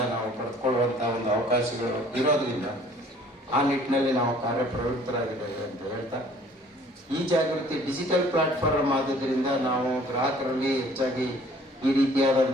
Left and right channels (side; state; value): both; normal; correlation 0.54